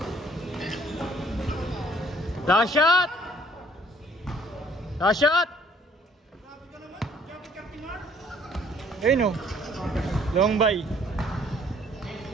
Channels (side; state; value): both; normal; correlation 0.59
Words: Last shot! Last shot! Ayun o. Long by.